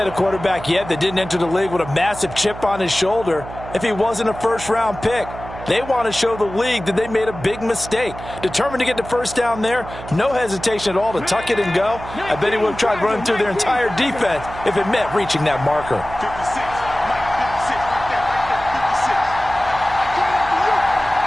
a quarterback yet that didn't enter the league with a massive chip on his shoulder if he wasn't a first-round pick. They want to show the league that they made a big mistake. Determined to get the first down there, no hesitation at all to tuck it and go. I bet he would have tried running through their entire defense if it meant reaching that marker.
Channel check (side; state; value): right; noise; hum, 13 dB below the sound